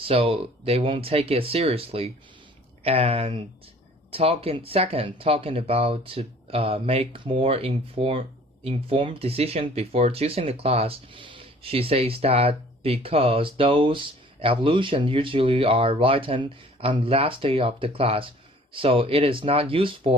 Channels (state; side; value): normal; both; correlation 0.52